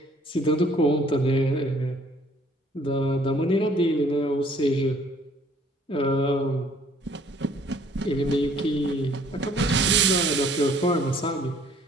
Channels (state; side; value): normal; both; correlation 0.59